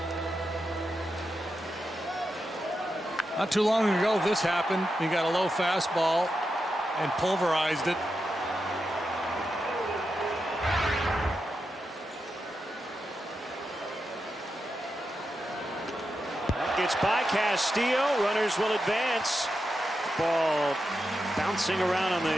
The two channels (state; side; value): normal; both; correlation 0.88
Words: Not too long ago, this happened. He got a low fastball and pulverized it. It's by Castillo. Runners will advance. Ball bouncing around on